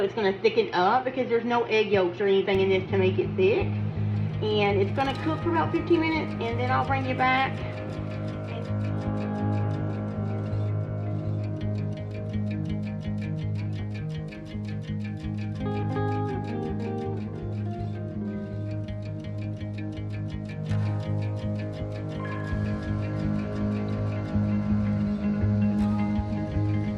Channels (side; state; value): both; identical; correlation 1.00